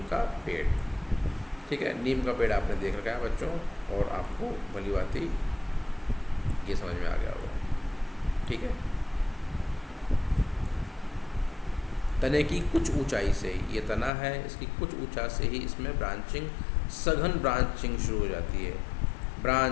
का पेड़। ठीक है, नीम का पेड़ आपने देख रखा है बच्चों, और आपको भली भांति ये समझ में आ गया होगा। ठीक है, तने की कुछ ऊंचाई से, ये तना है, इसकी कुछ ऊंचाई से ही इसमें ब्रांचिंग, सघन ब्रांचिंग शुरू हो जाती है।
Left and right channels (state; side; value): drops out; right; at 14.1 s